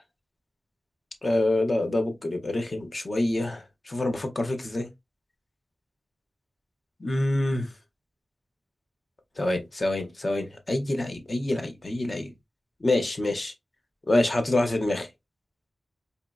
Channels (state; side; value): normal; both; correlation 0.95